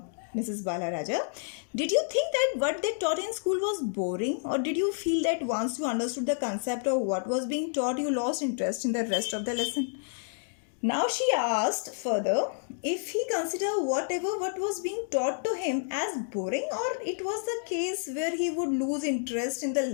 Mrs. Balaraja, did you think that what they taught in school was boring, or did you feel that once you understood the concept of what was being taught, you lost interest in the rest of the lesson? Now she asked further if he considered what was being taught to him as boring, or it was the case where he would lose interest in the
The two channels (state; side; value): silent; right; digital silence